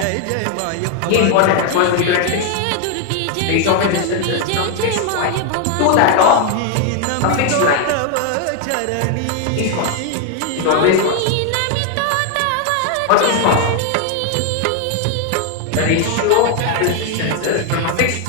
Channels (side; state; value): both; different; correlation 0.01